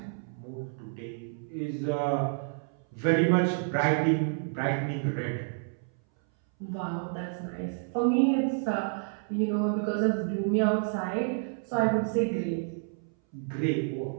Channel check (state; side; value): silent; left; 58 dB below the other